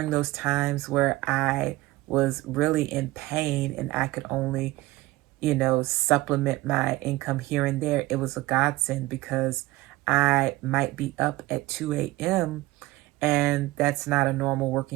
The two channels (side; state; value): left; quieter; 18.7 dB